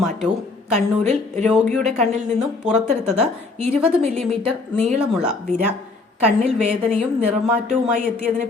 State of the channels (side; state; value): right; quieter; 3.7 dB